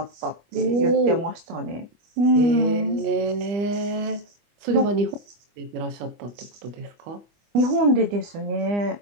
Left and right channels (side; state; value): left; late; 25 ms